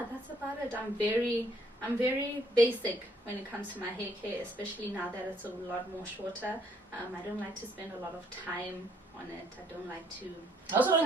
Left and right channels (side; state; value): both; normal; correlation 0.67